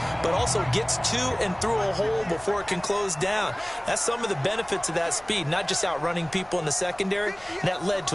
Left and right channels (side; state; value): left; noise; hum, 27 dB below the sound